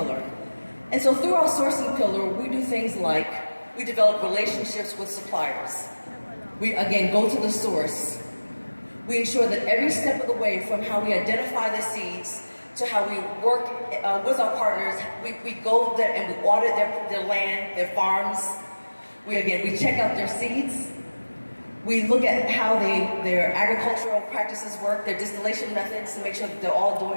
And so through our sourcing pillar, we do things like we develop relationships with suppliers. We, again, go to the source. We ensure that every step of the way, from how we identify the seeds to how we work with our partners, we go there and we audit their land, their farms. We check out their seeds. We look at how their agricultural practices work, their distillation methods, to make sure that they're all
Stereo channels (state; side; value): inverted; both; correlation -1.00